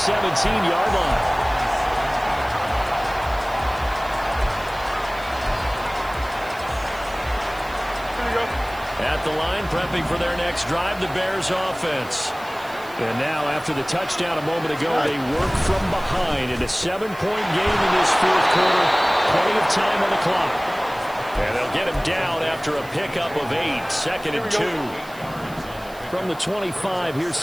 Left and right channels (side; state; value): right; noise; hiss, 21 dB below the sound